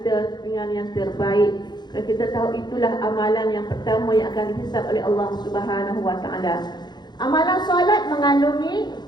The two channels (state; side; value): late; right; 0.21 ms